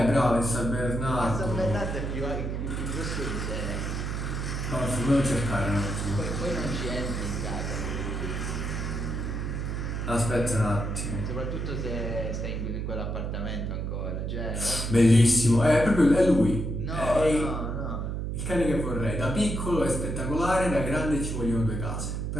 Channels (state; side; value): noise; right; hum, 3 dB below the sound